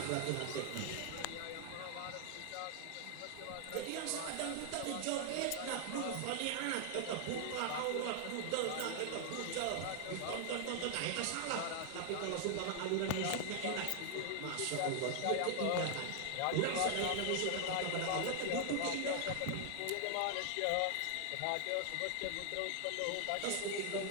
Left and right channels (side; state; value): both; different; correlation 0.00